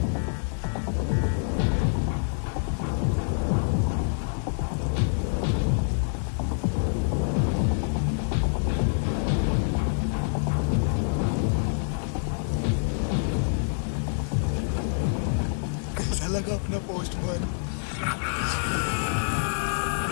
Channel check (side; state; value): right; silent; digital silence